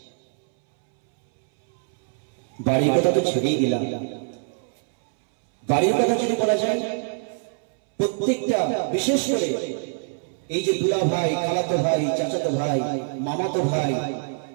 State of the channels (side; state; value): left; silent; 63 dB below the other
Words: বাড়ির কথা তো ছেড়েই দিলাম, বাড়ির কথা যদি বলা যায়, প্রত্যেকটা, বিশেষ করে এই যে দুলা ভাই, খালাতো ভাই, চাচাতো ভাই, মামাতো ভাই,